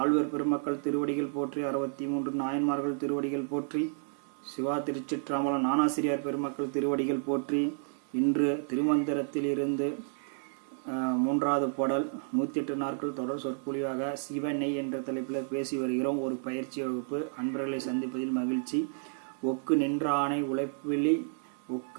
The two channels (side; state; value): left; silent; digital silence